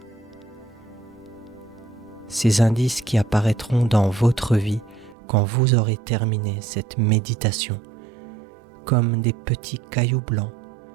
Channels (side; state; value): left; drops out; at 5.2 s